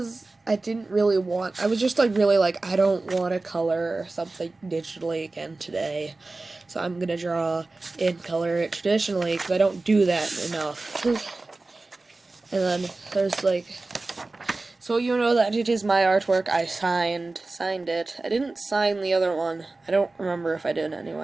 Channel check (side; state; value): left; quieter; 3.3 dB